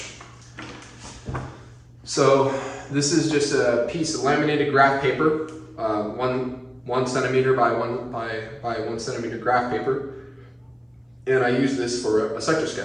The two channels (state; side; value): identical; both; correlation 1.00